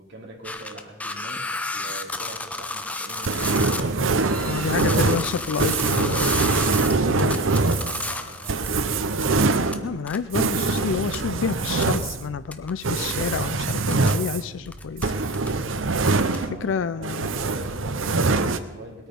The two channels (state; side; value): normal; both; correlation 0.27